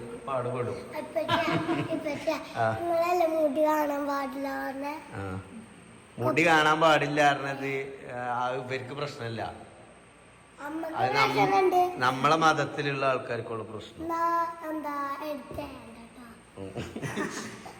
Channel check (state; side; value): identical; both; correlation 1.00